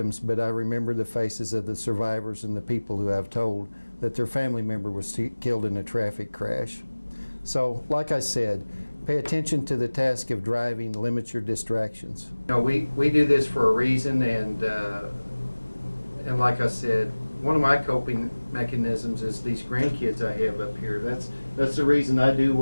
but I remember the faces of the survivors and the people who have told that their family member was killed in a traffic crash. So, like I said, pay attention to the task of driving, limit your distractions. You know, we do this for a reason, and like I said, one of my coping mechanisms is these grandkids I have up here. That's the reason I do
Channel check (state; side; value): inverted; both; correlation -1.00